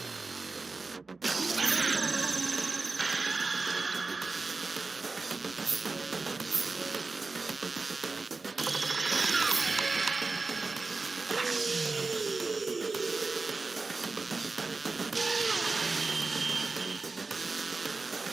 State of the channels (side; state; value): left; quieter; 3.8 dB